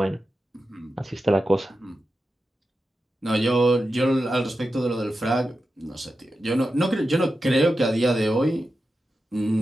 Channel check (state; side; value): normal; both; correlation 0.91